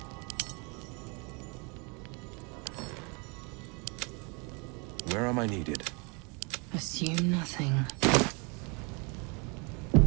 Where am I needed? Assume nothing.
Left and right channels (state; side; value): quieter; left; 32.0 dB